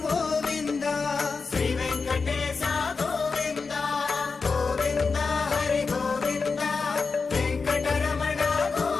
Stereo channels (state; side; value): quieter; right; 4.7 dB